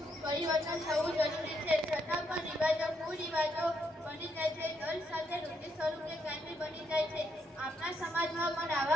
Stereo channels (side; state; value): both; normal; correlation 0.76